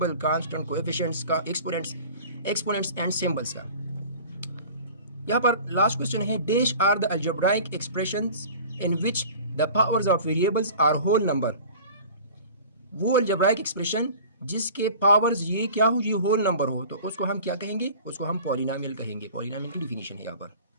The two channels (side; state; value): both; inverted; correlation -0.42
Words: कांस्टेंट, कोएफिशिएंट्स का, एक्सपोनेंट्स एंड सिंबल्स का। यहाँ पर लास्ट क्वेश्चन है, dash are the algebraic expressions in which the powers of variables are whole number, वो अलजेब्राइक एक्सप्रेशन जिसके पावर्स ये क्या हो, ये होल नंबर हो, तो उसको हम क्या कहेंगे, उसको हम पॉलिनोमियल कहेंगे। पॉलिनोमियल की डिफिनीशन है यहाँ पर।